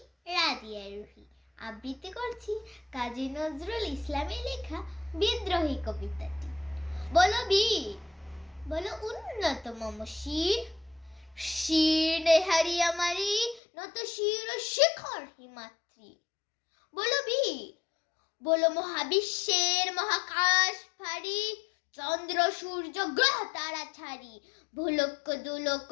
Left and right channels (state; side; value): drops out; right; at 13.6 s